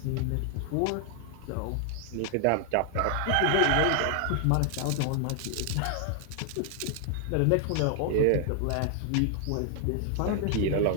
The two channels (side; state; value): both; different; correlation 0.00